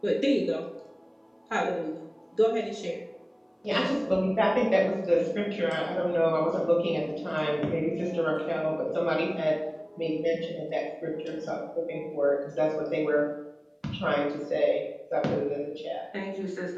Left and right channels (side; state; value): both; identical; correlation 1.00